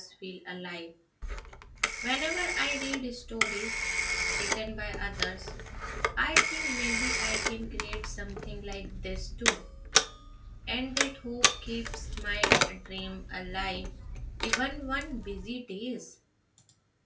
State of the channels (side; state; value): both; identical; correlation 1.00